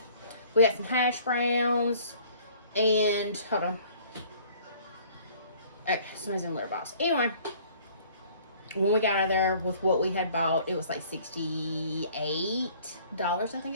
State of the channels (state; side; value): inverted; both; correlation -0.53